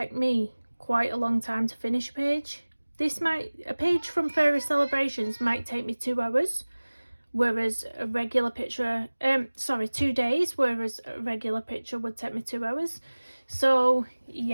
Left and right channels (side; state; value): both; inverted; correlation -1.00